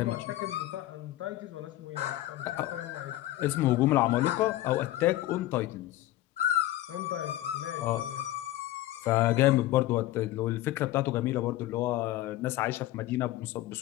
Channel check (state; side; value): quieter; right; 15.4 dB